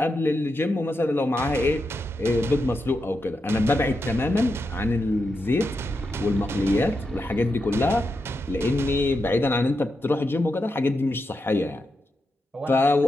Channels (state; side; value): normal; both; correlation 0.86